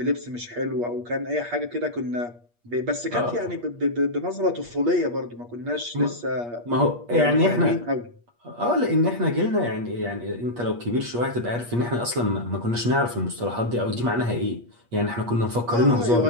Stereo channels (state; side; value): late; left; 8.4 ms